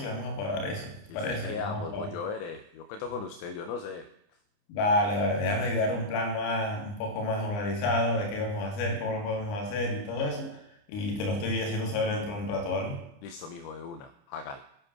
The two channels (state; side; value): late; right; 29 ms